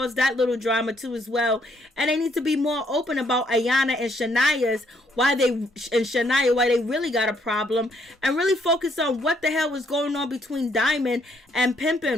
that little drama too as well. And they need to be more open about Ayana and Shania's, why they really got a problem, and really focus on what the hell was going on between Diamond and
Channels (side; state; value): both; normal; correlation 0.70